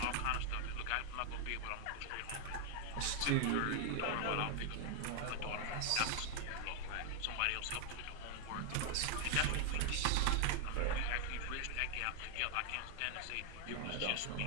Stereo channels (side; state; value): both; different; correlation 0.00